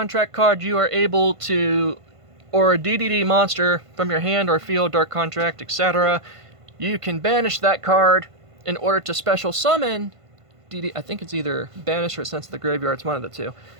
card, you are able to, or a DDD monster from your hand or field, Dark Contract, etc., you can banish that card in order to special summon DD. I think it's either banish or sent to the graveyard. It's one of the two.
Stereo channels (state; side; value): late; left; 1.5 ms